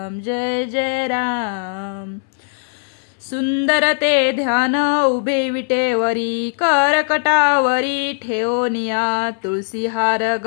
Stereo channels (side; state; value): right; silent; 67 dB below the other